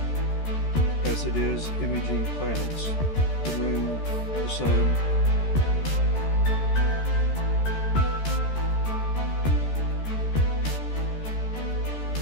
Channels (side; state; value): right; late; 13 ms